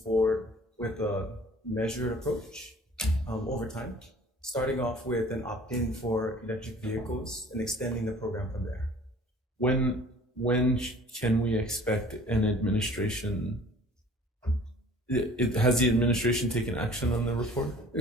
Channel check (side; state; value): both; normal; correlation 0.50